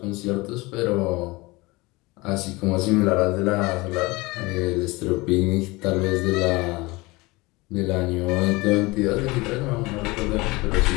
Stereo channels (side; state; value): right; quieter; 23.1 dB